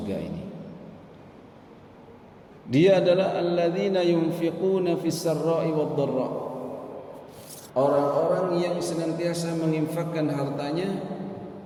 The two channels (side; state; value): both; identical; correlation 1.00